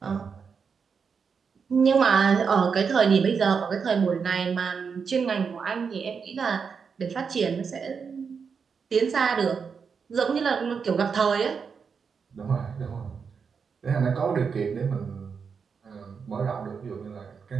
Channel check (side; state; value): left; quieter; 5.9 dB